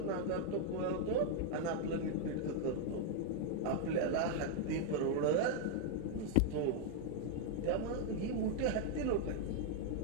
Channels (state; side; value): different; both; correlation 0.00